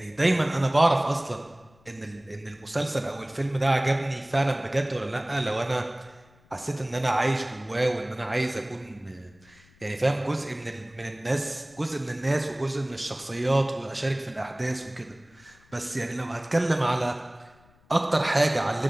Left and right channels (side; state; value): left; noise; rumble, 29 dB below the sound